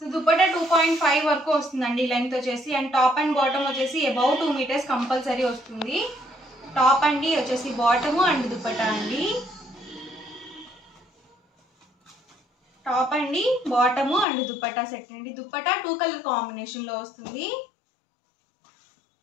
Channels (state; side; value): drops out; right; at 14.2 s